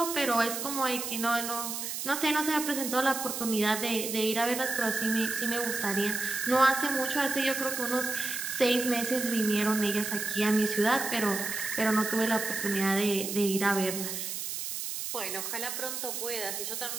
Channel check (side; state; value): right; noise; hiss, 4 dB below the sound